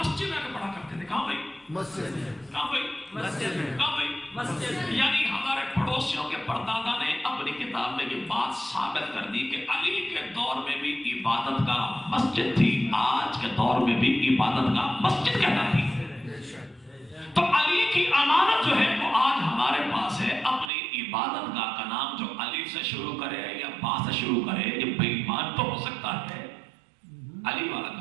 میں پڑھا کرتے تھے۔ کہاں بھائی؟ مسجد میں۔ کہاں بھائی؟ مسجد میں۔ کہاں بھائی؟ مسجد۔ یعنی ہمارے پڑوسیوں کے پردادا نے اپنی کتاب میں یہ بات ثابت کر دی کہ علی کے دور میں بھی عبادت کا مسجد تھی، آج کے دور میں بھی عبادت کا مسجد کہنا تھی۔ تو علی کی امانت جو ہے وہ آج ہمارے پاس ہے، اپنی عبادت گاہ کا نام جو علی سے شروع کرے یا با سے شروع کرے، یہ بے ایمان تو ہو سکتا ہے، علی والا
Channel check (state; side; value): drops out; left; at 20.7 s